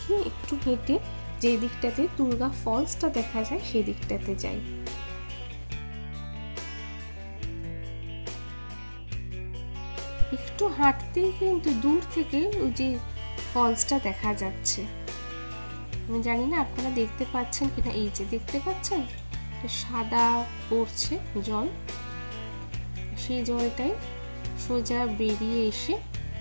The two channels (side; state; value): both; inverted; correlation -1.00